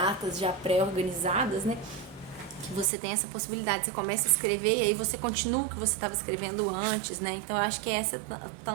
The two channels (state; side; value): drops out; left; at 2.9 s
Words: já pré-organizadas, né, que você tem essa possibilidade, você começa a escrever e aí você continua o que você estava escrevendo antes, né, então eu acho que essa é